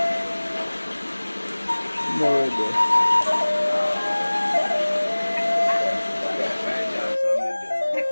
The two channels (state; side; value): inverted; both; correlation -1.00